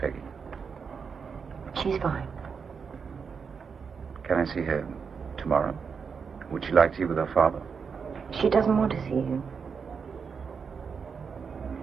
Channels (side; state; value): left; quieter; 5.9 dB